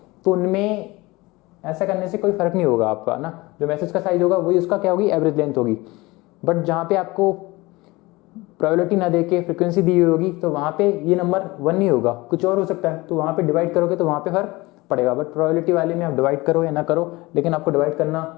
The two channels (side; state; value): right; quieter; 21.9 dB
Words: तो उनमें ऐसा करने से कोई फर्क नहीं होगा आपका ना, जो मैसेज का साइज होगा वही उसका क्या होगी, एवरेज लेंथ होगी। बट जहाँ पे आपको प्रोबेबिलिटी ना देके फ्रीक्वेंसी दी हुई होगी तो वहाँ पे ये नंबर 1 नहीं होगा, कुछ और हो सकता है, तो वहाँ पे डिवाइड करोगे तो वहाँ पे फर्क पड़ेगा। बट प्रोबेबिलिटी वाले में आप डिवाइड करो या ना करो, लेकिन आपको डिवाइड